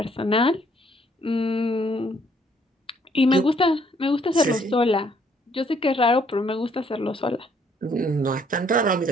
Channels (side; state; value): both; normal; correlation 0.66